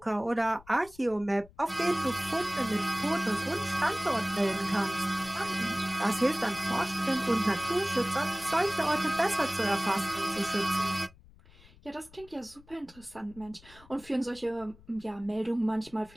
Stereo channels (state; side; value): noise; left; rumble, 24 dB below the sound